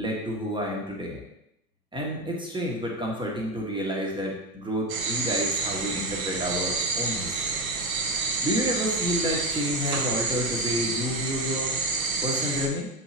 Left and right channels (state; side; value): normal; both; correlation 0.17